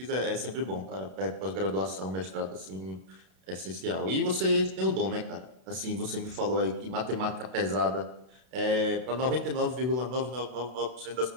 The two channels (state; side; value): late; left; 32 ms